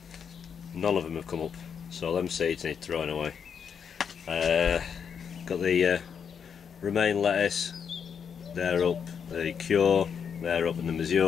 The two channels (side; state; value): right; quieter; 7.1 dB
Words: none of them have come up, so them seeds need throwing away. Got the romaine lettuce, they're up, the Cure, they're up, and the